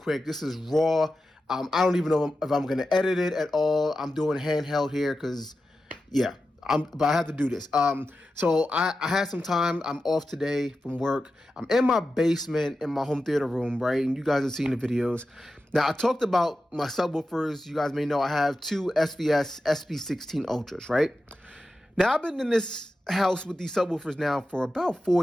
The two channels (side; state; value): both; normal; correlation 0.92